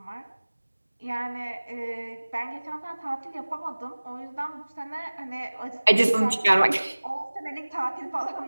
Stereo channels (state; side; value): inverted; both; correlation -1.00